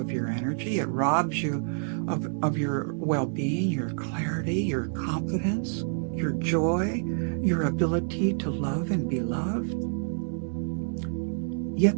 your energy. It robs you of your well-being, your clarity, your confidence, your joy, your ability to love and be loved.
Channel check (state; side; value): silent; left; 58 dB below the other